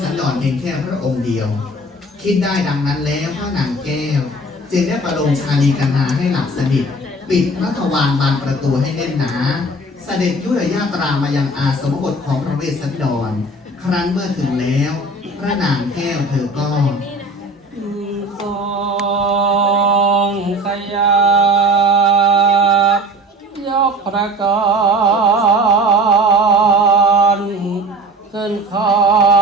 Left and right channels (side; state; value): both; normal; correlation 0.42